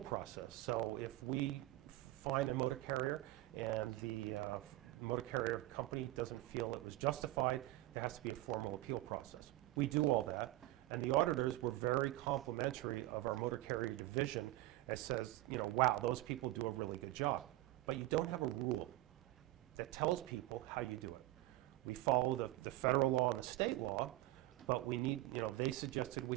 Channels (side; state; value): left; quieter; 17.6 dB